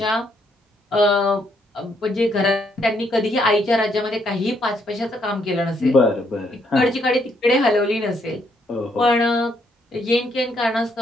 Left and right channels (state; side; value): normal; both; correlation 0.73